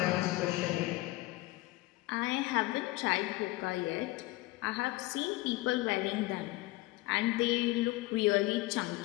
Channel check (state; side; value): quieter; right; 19.9 dB